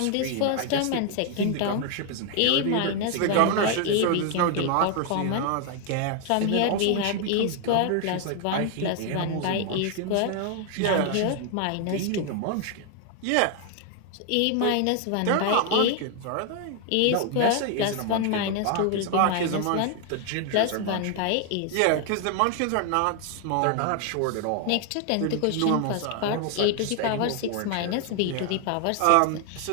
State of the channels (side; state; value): both; different; correlation 0.00